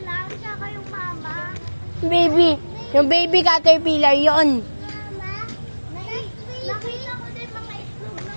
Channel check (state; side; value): inverted; both; correlation -1.00